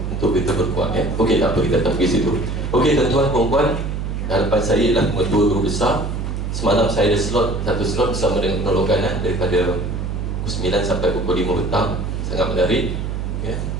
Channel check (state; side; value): noise; right; hum, 3 dB below the sound